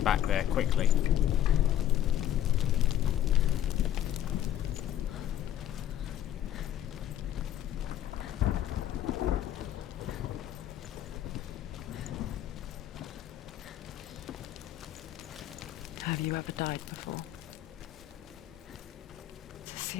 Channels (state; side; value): quieter; right; 11.5 dB